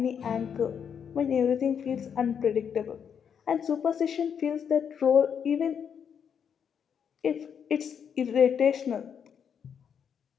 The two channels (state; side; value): quieter; right; 7.6 dB